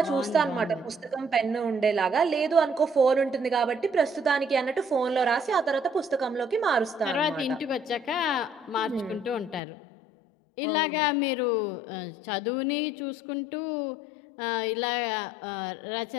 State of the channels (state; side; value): drops out; right; at 9.6 s